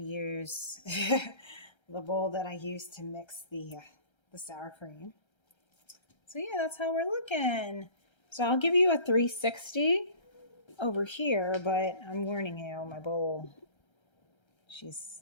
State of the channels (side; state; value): right; late; 1.3 ms